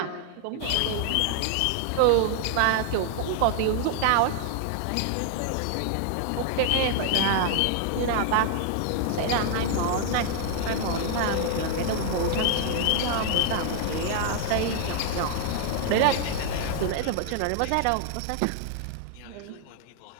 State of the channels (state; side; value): different; both; correlation 0.00